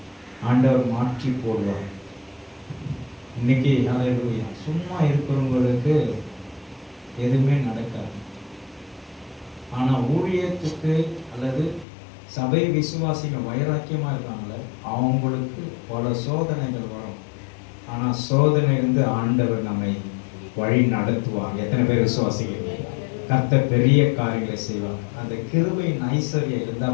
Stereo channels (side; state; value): right; drops out; at 11.9 s